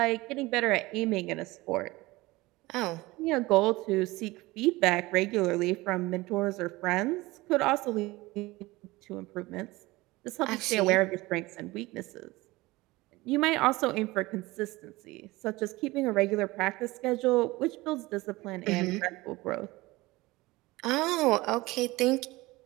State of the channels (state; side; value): quieter; left; 20.6 dB